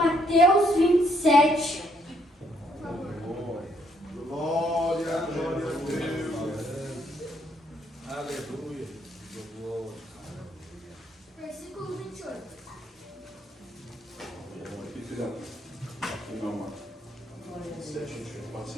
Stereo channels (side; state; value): both; normal; correlation 0.70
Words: 27. Por favor. Glória a Deus. Aleluia. Versículo 28. Aqui, filhão. Aqui não, mano. Certinho, pode